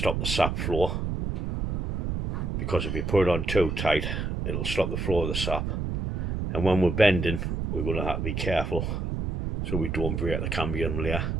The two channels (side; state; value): right; noise; rumble, 2 dB below the sound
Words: the sap flow, because if you put it on too tight it'll stop the flow of the sap, and when we're bending we're going to have to be careful so we don't break the cambium layer.